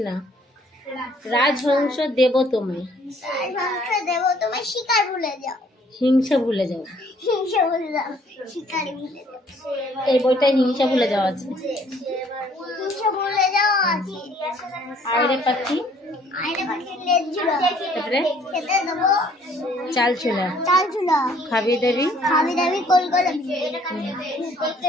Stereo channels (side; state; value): both; normal; correlation 0.60